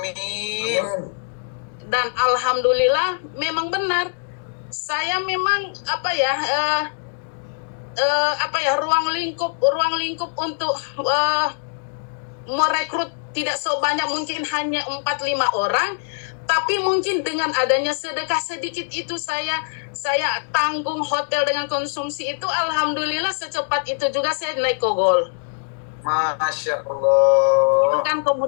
Dan alhamdulillah memang benar, saya memang ruang lingkup untuk merekrut tidak sebanyak, mungkin hanya 4-5 orang, tapi mungkin dengan adanya sedekah sedikit itu saya tanggung hotel dengan konsumsi itu, alhamdulillah secepat itu juga saya naik kogol. Masya Allah. Itu kan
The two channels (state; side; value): silent; right; digital silence